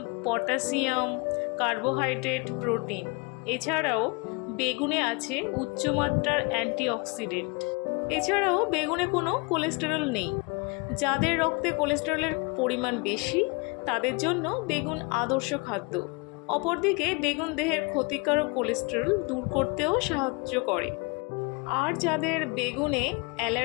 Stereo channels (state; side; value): quieter; right; 29.4 dB